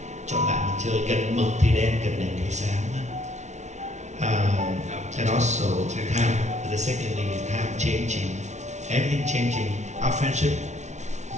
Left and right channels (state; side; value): late; left; 0.33 ms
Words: Chọn bạn mà chơi, gần mực thì đen, gần đèn thì sáng. And also time, the second thing is time changing, everything changing. Our friendship